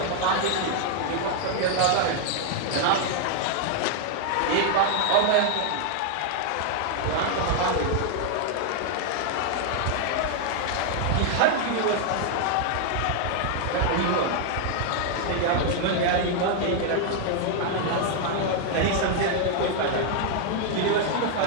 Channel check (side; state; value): both; different; correlation 0.00